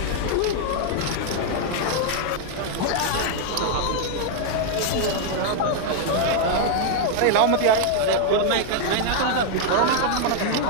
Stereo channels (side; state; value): both; different; correlation 0.00